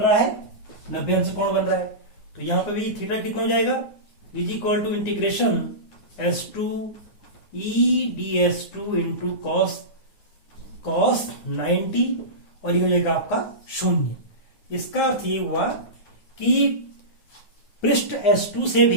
है, 90 अंश कोण बन रहा है। तो यहां पे भी थीटा कितना हो जाएगा, is equal to integration S2 E.ds2 into cos 90, और ये हो जाएगा आपका 0। इसका अर्थ ये हुआ कि पृष्ठ S2 से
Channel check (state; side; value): late; right; 9.6 ms